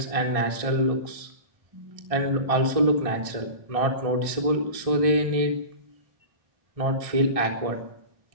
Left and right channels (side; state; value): left; late; 1.6 ms